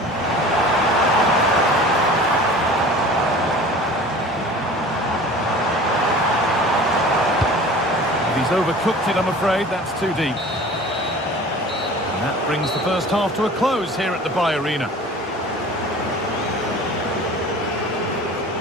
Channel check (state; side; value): normal; both; correlation 0.42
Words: He's overcooked it, I'm afraid. That's too deep. And that brings the first half to a close here at the Bay Arena.